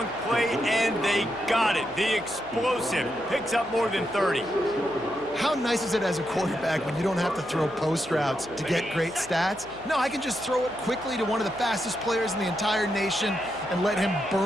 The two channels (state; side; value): noise; left; hum, 25 dB below the sound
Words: play, and they got it. The explosive picks up more than 30. How nice is it as a quarterback when you don't have to throw post routes to get great stats? No, I can just throw it quickly to one of the fastest players in the entire nation and let him